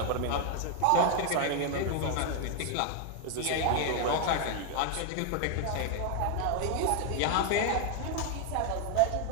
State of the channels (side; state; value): both; different; correlation 0.00